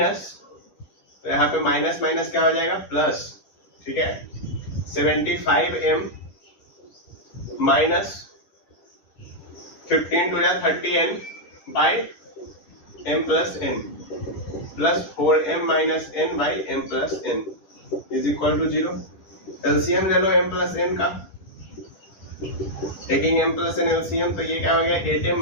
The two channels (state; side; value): late; right; 10 ms